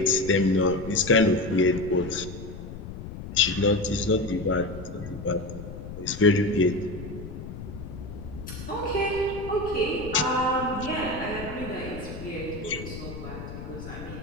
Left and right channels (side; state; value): left; noise; rumble, 10 dB below the sound